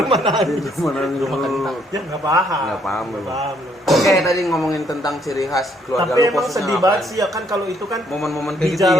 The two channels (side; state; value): both; normal; correlation 0.69